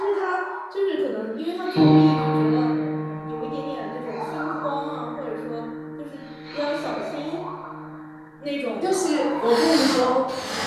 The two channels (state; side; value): identical; both; correlation 1.00